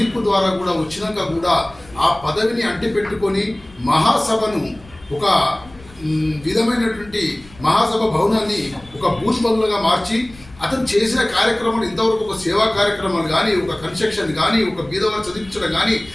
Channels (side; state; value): left; noise; rumble, 22 dB below the sound